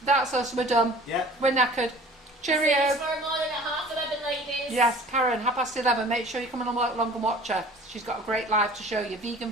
that's us. We're done. Yeah. We're knackered. Cheerio. See you tomorrow morning at 11:30, ladies. Yes, Karen, 11:30. Make sure you come along and watch her. She's got a great live to show you.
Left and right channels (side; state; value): both; normal; correlation 0.46